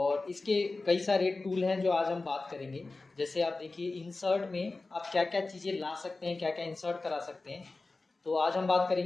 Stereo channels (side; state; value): right; quieter; 3.5 dB